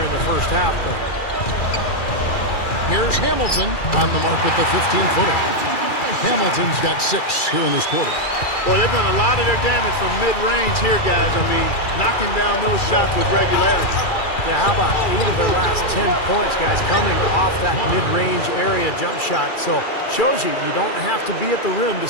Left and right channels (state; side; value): late; right; 2.4 ms